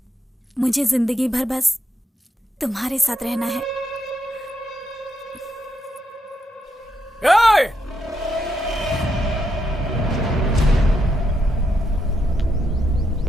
मुझे जिंदगी भर बस तुम्हारे साथ रहना है।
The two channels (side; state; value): both; normal; correlation 0.80